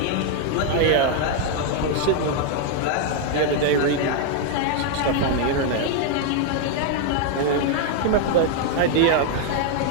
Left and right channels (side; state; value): both; different; correlation 0.00